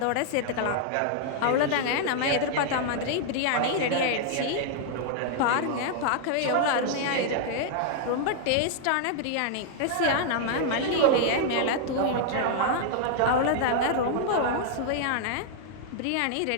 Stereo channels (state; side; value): different; both; correlation -0.01